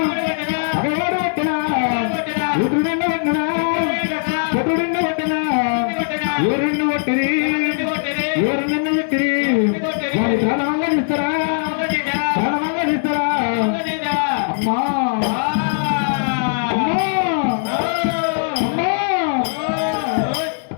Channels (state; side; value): silent; right; digital silence